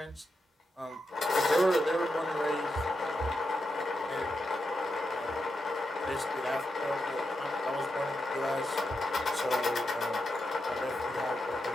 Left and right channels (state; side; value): normal; both; correlation 0.86